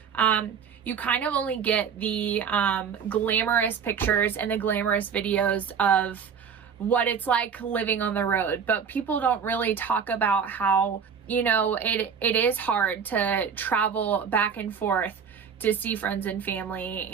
You kind of only get the glamorous pictures and the glamorous videos of what it's like living on the road, but people don't really talk about how, it is hard to travel back and forth to see friends and family.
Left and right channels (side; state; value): left; quieter; 6.8 dB